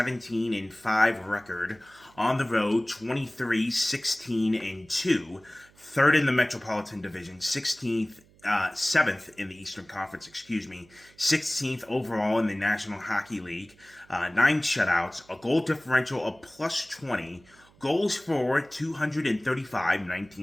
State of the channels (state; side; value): noise; right; hum, 29 dB below the sound